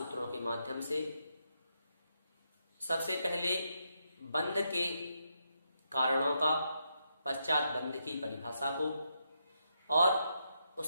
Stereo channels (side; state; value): both; inverted; correlation -0.81